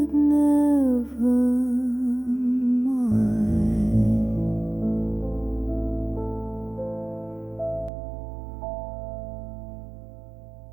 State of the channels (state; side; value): drops out; left; at 7.9 s